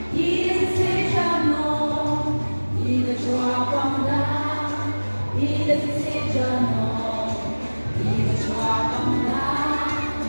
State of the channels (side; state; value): both; inverted; correlation -1.00